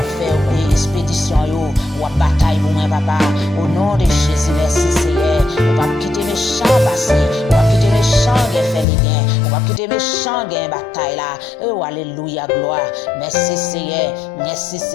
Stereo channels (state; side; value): drops out; right; at 8.8 s